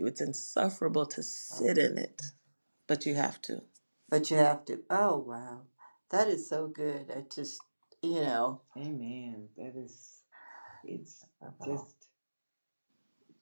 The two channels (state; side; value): inverted; both; correlation -1.00